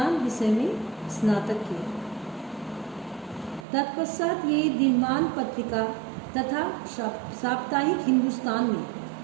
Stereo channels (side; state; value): left; drops out; at 3.7 s